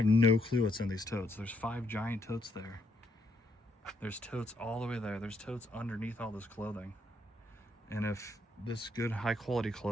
no clue what's in these totes. There's 5 giant totes there. There's totes all the way there. There's totes underneath all this clothing. And if this good high quality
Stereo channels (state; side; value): normal; both; correlation 0.75